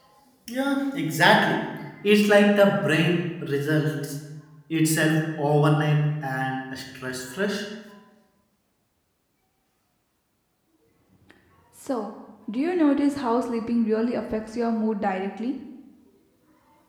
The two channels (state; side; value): identical; both; correlation 1.00